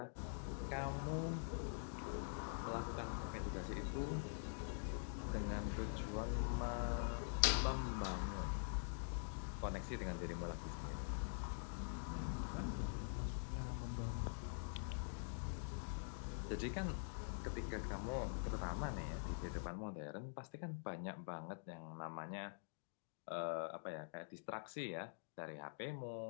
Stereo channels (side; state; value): right; silent; digital silence